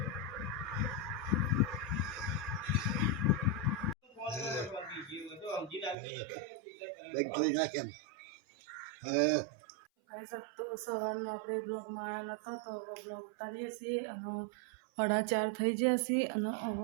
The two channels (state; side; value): drops out; left; at 6.0 s